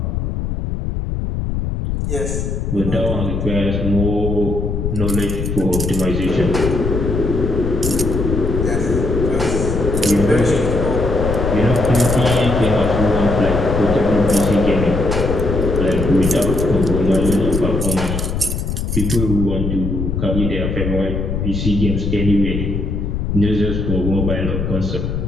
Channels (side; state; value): left; noise; rumble, 2 dB below the sound